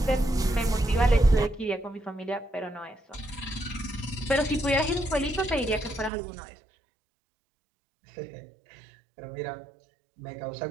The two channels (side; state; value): left; drops out; at 6.1 s